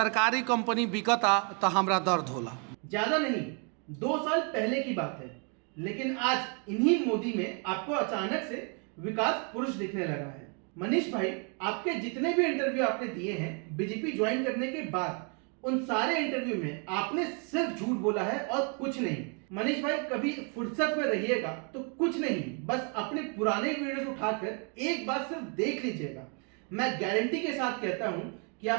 कंपनी बिकता तो हमरा दर्द होला। ज्यादा नहीं, 2 साल पहले की बात है, लेकिन आज इन्हीं मोदी में आपको अचानक से विकास पुरुष दिखने लगा है। मनीष भाई, आपके जितने भी इंटरव्यू आपने दिए हैं बीजेपी ज्वाइन करने के बाद, उन सारे इंटरव्यू में आपने सिर्फ झूठ बोला है और कुछ नहीं। मनीष भाई, कभी फुर्सत में रहिएगा तो कुछ नहीं, बस अपने पुराने वीडियोस उठाकर एक बार सिर्फ देख लीजिएगा। मैं गारंटी के साथ कहता हूं कि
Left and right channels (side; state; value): left; quieter; 37.8 dB